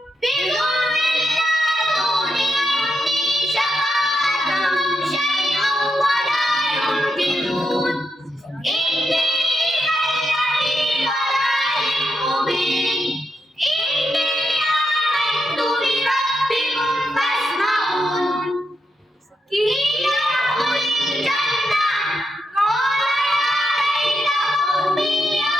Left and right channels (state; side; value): normal; both; correlation 0.83